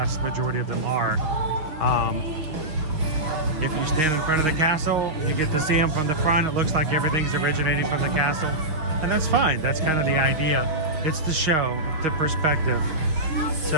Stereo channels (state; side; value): late; left; 6.3 ms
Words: majority of them are. If you stand in front of the castle, you get to see them from the front. It looks like everything's originating from the castle, and that's fine. That's kind of the idea. It's the show, the perspective.